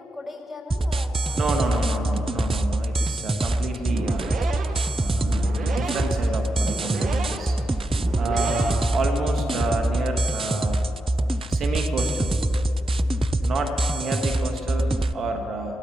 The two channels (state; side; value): normal; both; correlation 0.88